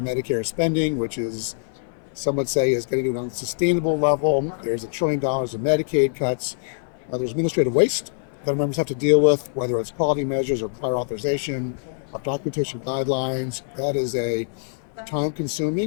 spending, which is, some would say, is getting to an unsustainable level. There's $1 trillion in Medicaid cuts. There's administrative waste that members have to deal with, whether it's quality measures or prior authorization, of documentation guidelines. That is a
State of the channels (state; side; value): silent; right; 59 dB below the other